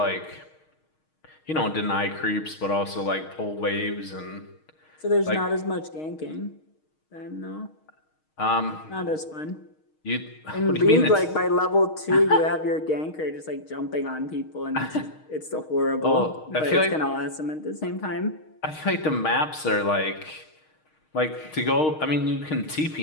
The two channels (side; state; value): right; late; 6.4 ms